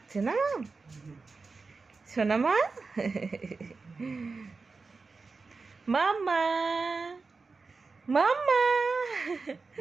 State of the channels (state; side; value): quieter; left; 4.3 dB